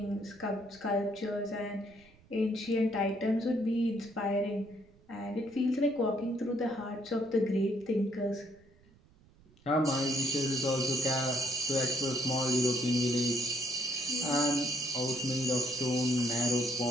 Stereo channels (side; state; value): right; noise; rumble, 28 dB below the sound